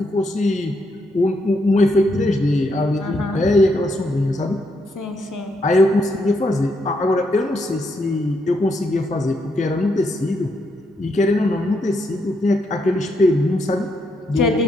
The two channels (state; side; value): normal; both; correlation 0.78